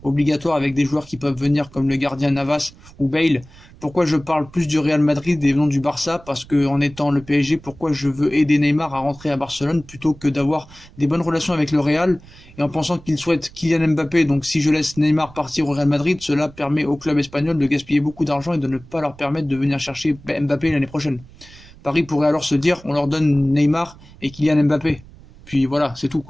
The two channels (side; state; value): right; noise; rumble, 22 dB below the sound